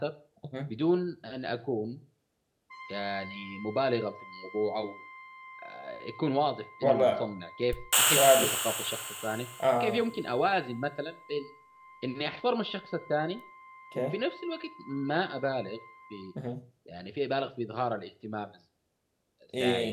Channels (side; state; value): both; identical; correlation 1.00